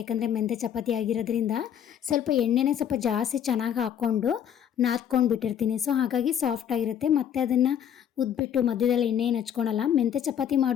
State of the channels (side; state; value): right; quieter; 9.3 dB